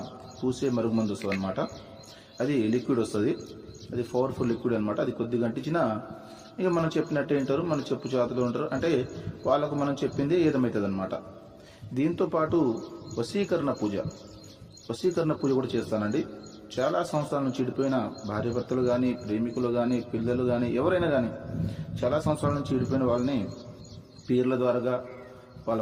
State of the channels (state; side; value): identical; both; correlation 1.00